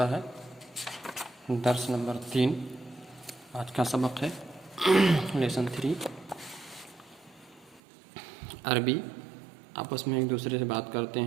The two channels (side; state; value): left; drops out; at 7.8 s